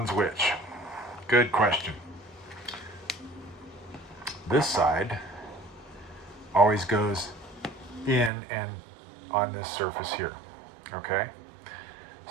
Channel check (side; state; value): left; drops out; at 8.3 s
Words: which? Good question. This side always goes in and on this surface here, okay?